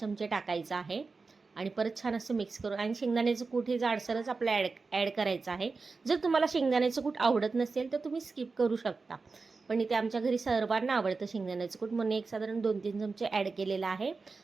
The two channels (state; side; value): quieter; left; 4.2 dB